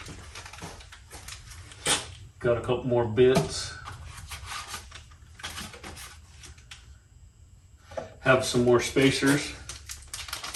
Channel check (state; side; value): identical; both; correlation 1.00